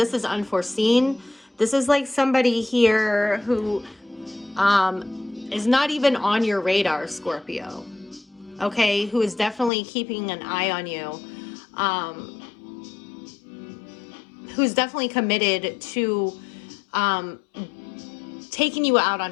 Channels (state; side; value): drops out; right; at 9.7 s